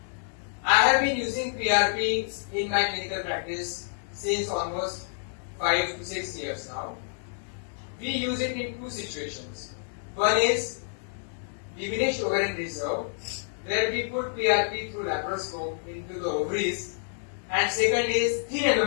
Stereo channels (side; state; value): right; silent; digital silence